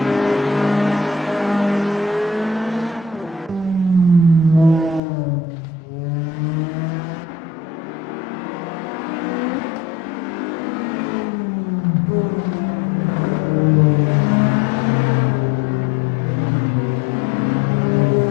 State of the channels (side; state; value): right; drops out; at 5.0 s